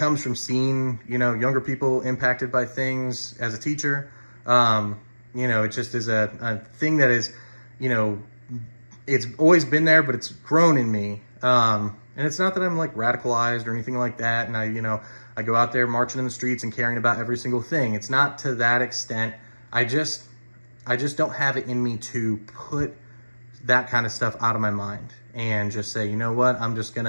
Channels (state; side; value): inverted; both; correlation -1.00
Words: from seeing, younger people impacted by things as a teacher. It just is a thing that is, it's always been there, but it's grown in me. And it's not that I'm like radicalized or anything like that. And I go out there marching in the streets and caring about every single thing. It's not to that extent. I just don't have it in me to put that kind of stuff out of my mind and just say, you know what, I'm just